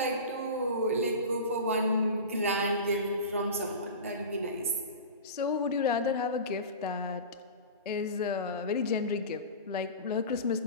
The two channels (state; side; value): inverted; both; correlation -0.31